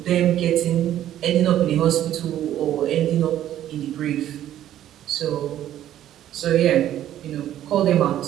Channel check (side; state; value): left; quieter; 12.0 dB